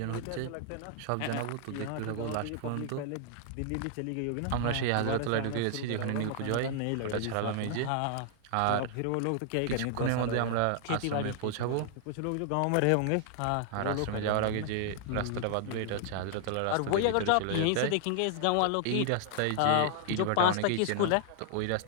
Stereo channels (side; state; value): both; different; correlation -0.01